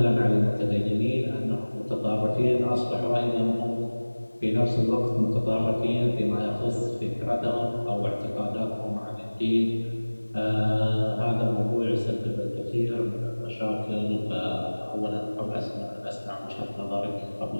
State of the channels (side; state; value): both; inverted; correlation -1.00